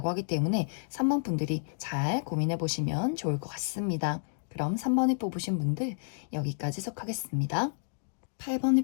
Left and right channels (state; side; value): silent; right; digital silence